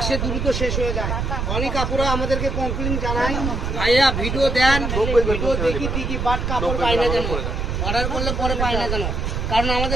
আসে, দ্রুত শেষ হয়ে যায়। অনেক আপুরা আমাদেরকে কমপ্লেন জানায়, ভাইয়া ভিডিও দেন, ভিডিও দেখি ঠিকই বাট কাপড় পাই না কেন, অর্ডার করলে পরে পাই না কেন? কারণ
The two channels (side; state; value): right; noise; rumble, 1 dB below the sound